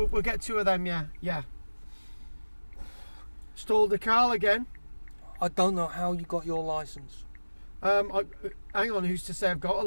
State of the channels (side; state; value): both; inverted; correlation -1.00